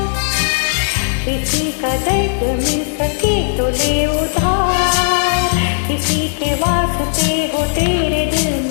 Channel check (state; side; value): silent; right; digital silence